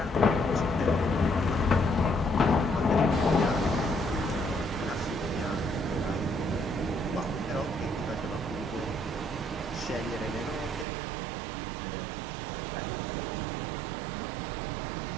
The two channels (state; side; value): drops out; left; at 10.9 s